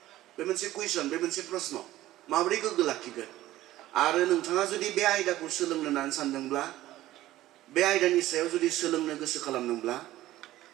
बे मोनसे कुइसन, बे मोनसे प्रश्न, माबोरै गोग्गो लाखिगोन? आरो नोंथाङा जुदि बे आयदाखौ सोलोंनो होननानै सानदोंब्ला, बे आयदानि सायाव जुदि सोलोंनो गोसो खालामदोंब्ला,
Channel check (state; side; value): quieter; left; 15.3 dB